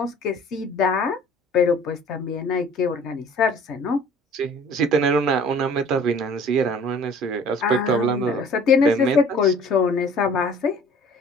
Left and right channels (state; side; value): normal; both; correlation 0.50